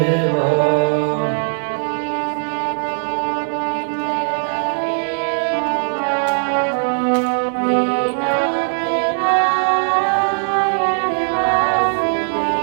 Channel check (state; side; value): silent; left; 62 dB below the other